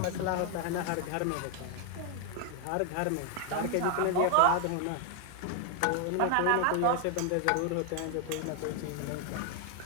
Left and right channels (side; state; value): both; different; correlation 0.00